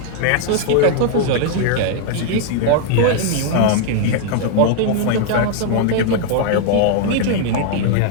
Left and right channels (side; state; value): both; different; correlation 0.00